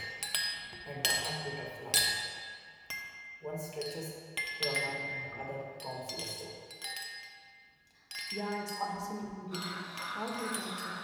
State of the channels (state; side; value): identical; both; correlation 1.00